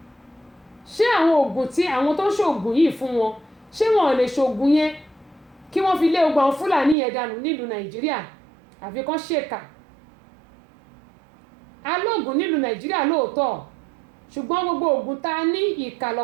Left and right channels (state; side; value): drops out; left; at 7.0 s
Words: ṣé àwọn oògùn tí àwọn tó ń ṣògùn yìí fún wọn ṣé wọn ò lè ṣògùn yẹn kí wọ́n fi lé ogun àwọn Fúlàní yẹn dànù nílùú Nàìjíríà àfi kán ṣèkà alóògùn nílùú Nàìjíríà lóòótọ́ ṣùgbọ́n gbogbo oògùn tá a ní ìkà